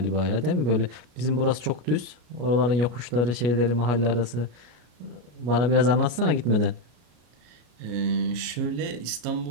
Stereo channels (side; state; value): left; late; 33 ms